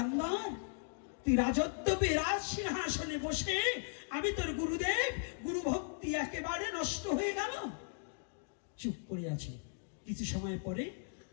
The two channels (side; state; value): right; silent; digital silence